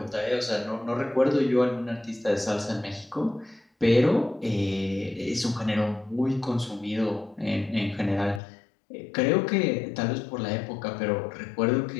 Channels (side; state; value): right; drops out; at 8.4 s